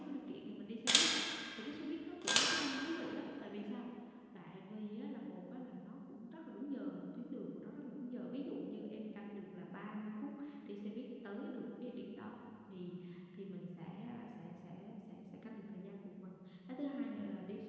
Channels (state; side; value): identical; both; correlation 1.00